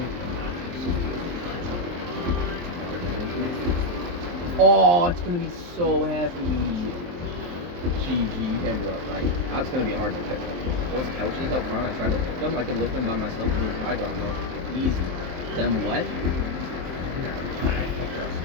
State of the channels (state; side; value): late; left; 23 ms